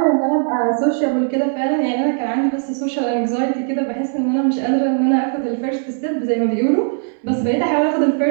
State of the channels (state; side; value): silent; left; 57 dB below the other